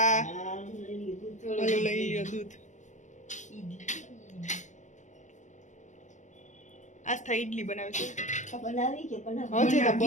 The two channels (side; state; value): right; late; 0.35 ms